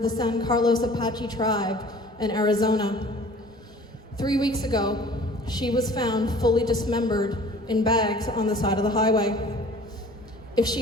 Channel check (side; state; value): both; normal; correlation 0.48